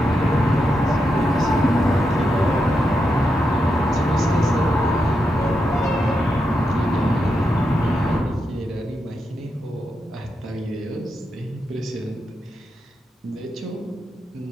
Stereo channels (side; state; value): both; normal; correlation 0.85